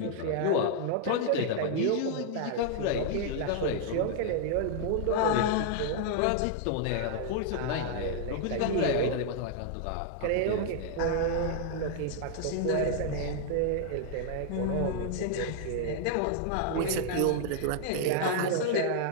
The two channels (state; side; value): different; both; correlation 0.00